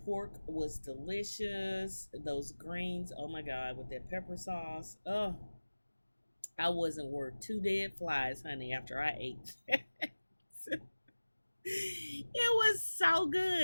pork was delicious. Those greens, oh my God, with that pepper sauce. Oh, I wasn't worth two dead flies, honey, after I ate. It was so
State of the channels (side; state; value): both; inverted; correlation -1.00